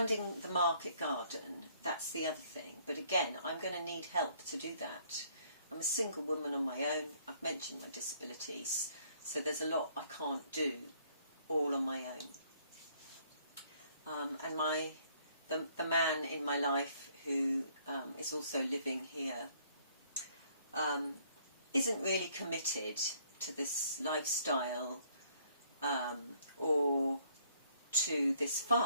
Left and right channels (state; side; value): inverted; both; correlation -0.63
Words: the market garden. That's the other thing. But again, I'm going to need help to do that. I'm a single woman on my own. I've mentioned my disabilities, so there's a lot I can't do all on my own. And the man in my life who is also living here isn't really committed to this lifestyle or to this